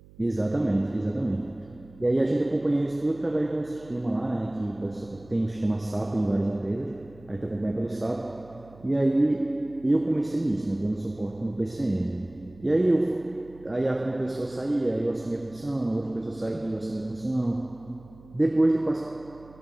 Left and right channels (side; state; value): right; noise; hum, 23 dB below the sound